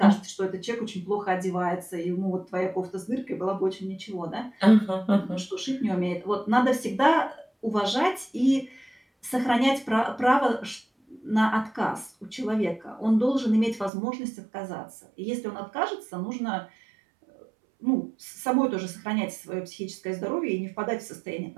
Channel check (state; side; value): drops out; left; at 13.9 s